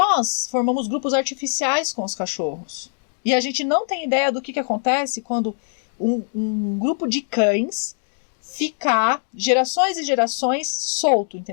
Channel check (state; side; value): silent; right; digital silence